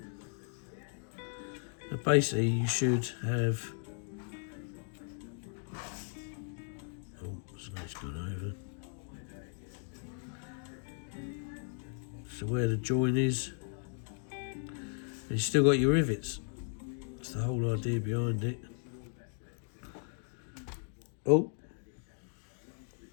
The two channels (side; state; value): right; silent; 54 dB below the other